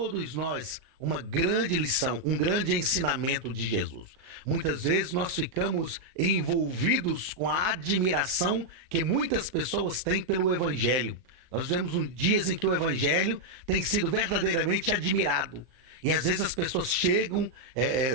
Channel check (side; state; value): left; late; 39 ms